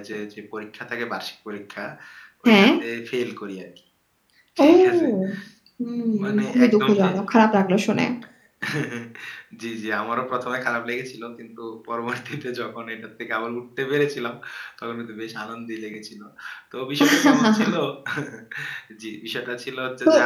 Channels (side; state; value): both; identical; correlation 1.00